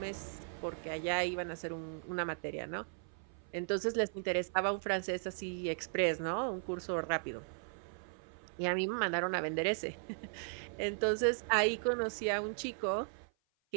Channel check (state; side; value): silent; left; 53 dB below the other